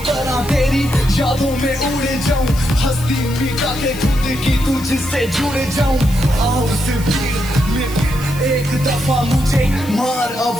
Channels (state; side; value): noise; left; hiss, 16 dB below the sound